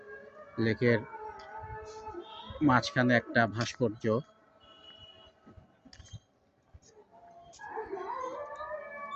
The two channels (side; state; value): both; identical; correlation 1.00